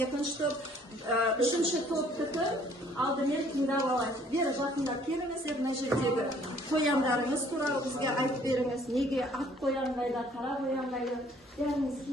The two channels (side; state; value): both; normal; correlation 0.59